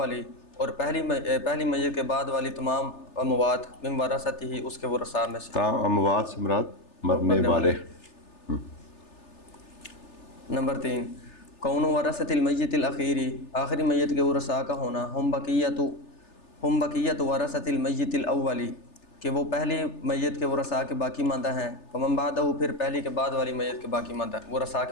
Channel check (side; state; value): right; late; 3.3 ms